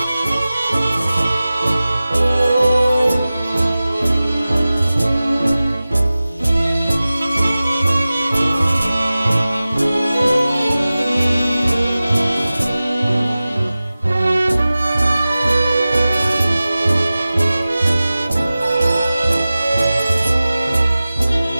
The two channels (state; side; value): inverted; both; correlation -0.97